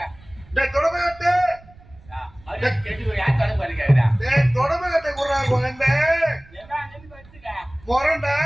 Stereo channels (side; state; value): right; noise; rumble, 24 dB below the sound